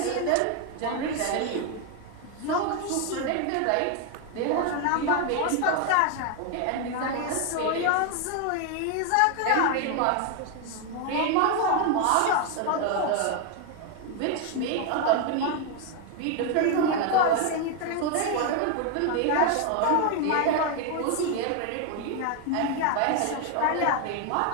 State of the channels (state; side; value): different; both; correlation 0.01